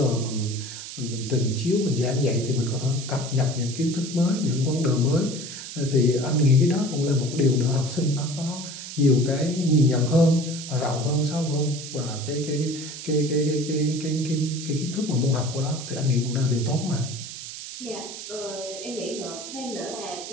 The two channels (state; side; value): noise; right; hiss, 10 dB below the sound